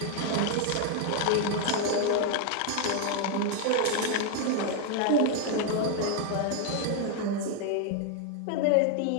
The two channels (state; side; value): different; both; correlation 0.00